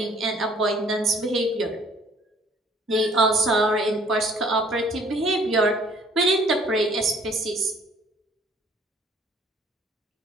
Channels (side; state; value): both; normal; correlation 0.57